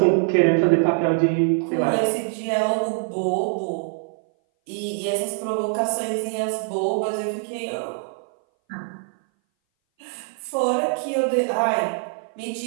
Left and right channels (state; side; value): silent; left; 59 dB below the other